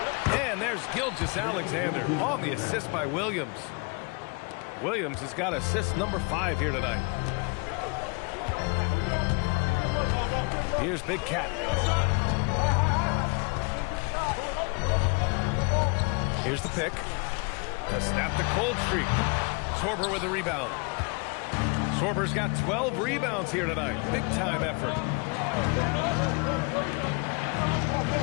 And there's Gilgeous-Alexander on the assist by Williams. Williams has got assist number 5 here tonight. Here's Big Cat. Here's the pick. To snap the cold streak. Sorber with a rebound. Sorber's got 12 rebounds here tonight. Big time effort.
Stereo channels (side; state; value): right; quieter; 31.8 dB